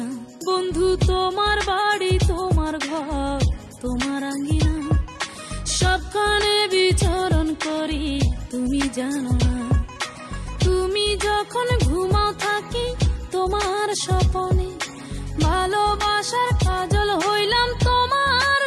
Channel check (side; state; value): both; identical; correlation 1.00